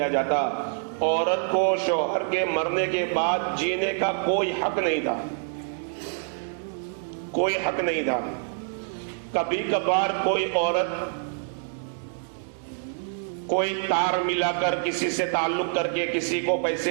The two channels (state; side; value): silent; left; digital silence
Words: جاتا. عورت کو شوہر کے مرنے کے بعد جینے کا کوئی حق نہیں تھا، کوئی حق نہیں تھا. کبھی کبھار کوئی عورت کوئی تار ملا کر، کسی سے تعلق کر کے، کسی کو